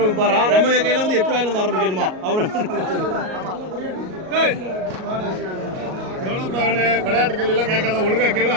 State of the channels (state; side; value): late; left; 38 ms